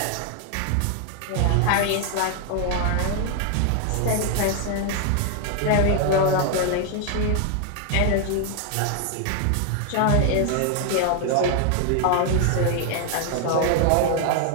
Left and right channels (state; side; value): different; both; correlation 0.00